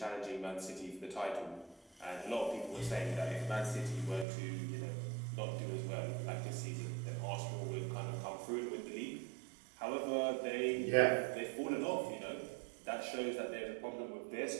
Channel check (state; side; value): drops out; left; at 4.2 s